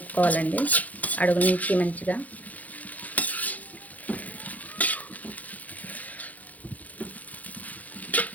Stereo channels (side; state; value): right; late; 0.077 ms